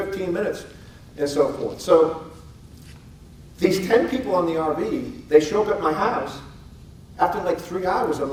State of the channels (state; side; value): identical; both; correlation 1.00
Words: minutes. And so forth. So these 10 people on the RV, they show up at my house. After like 3 hours, I'm